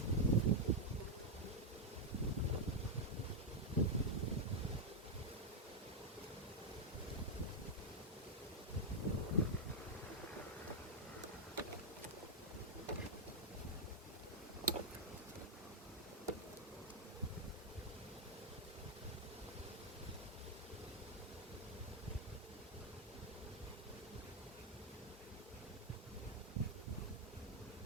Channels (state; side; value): normal; both; correlation -0.01